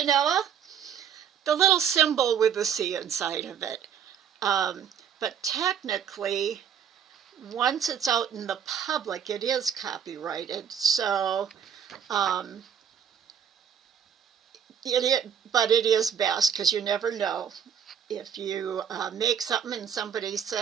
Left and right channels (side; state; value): left; quieter; 8.0 dB